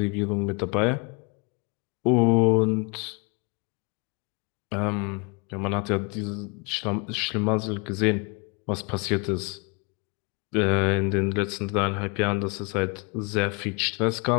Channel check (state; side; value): quieter; right; 31.5 dB